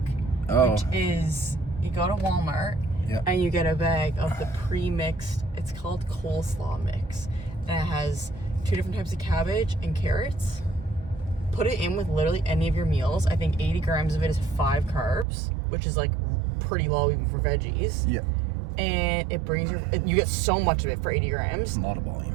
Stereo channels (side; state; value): left; drops out; at 15.2 s